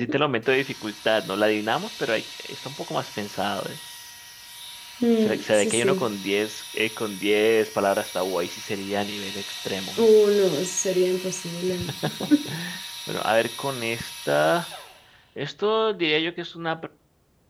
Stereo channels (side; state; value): both; identical; correlation 1.00